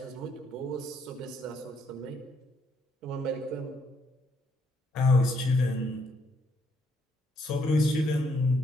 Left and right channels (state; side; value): normal; both; correlation 0.72